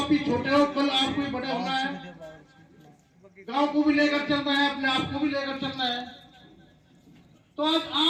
भी छोटे हो, कल आपको भी बड़े होना है। गांव को भी लेकर चलना है, अपने आप को भी लेकर चलना है। तो आज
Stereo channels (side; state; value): both; identical; correlation 1.00